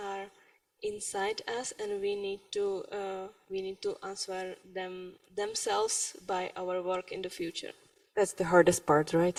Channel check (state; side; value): identical; both; correlation 1.00